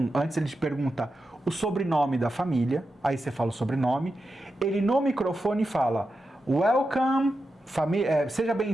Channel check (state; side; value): normal; both; correlation 0.89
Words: antes ele te pergunta o sobrenome da família, aí você fala o sobrenome, ele no microfone fala, welcome, seja